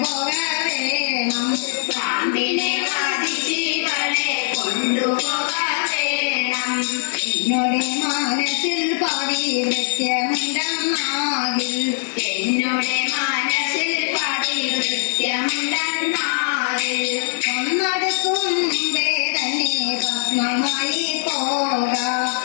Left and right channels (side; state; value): right; silent; digital silence